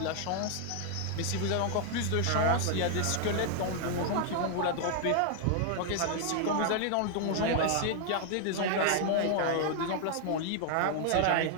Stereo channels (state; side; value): different; both; correlation 0.00